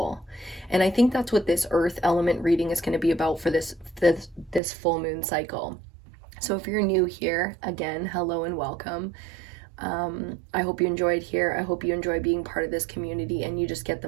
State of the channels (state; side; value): drops out; left; at 4.6 s